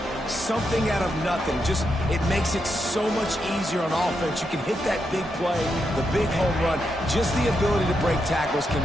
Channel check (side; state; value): both; normal; correlation 0.83